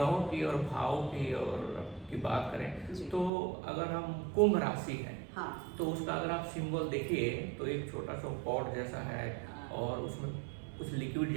की और भावों की बात करें तो अगर हम कुंभ राशि है, हाँ, तो उसका अगर आप सिंबल देखिए तो एक छोटा सा पॉट जैसा है और उसमें कुछ लिक्विड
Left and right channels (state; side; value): drops out; left; at 3.3 s